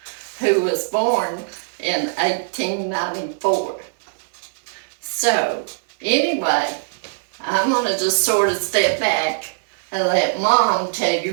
who was born in 1894. So, anyway, I'm going to just sort of step back and let Mom tell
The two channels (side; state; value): left; silent; digital silence